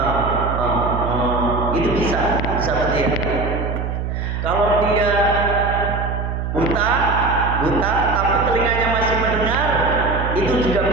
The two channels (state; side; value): noise; right; hum, 3 dB below the sound